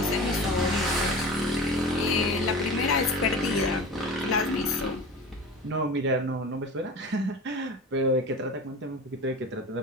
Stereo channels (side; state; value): both; normal; correlation 0.34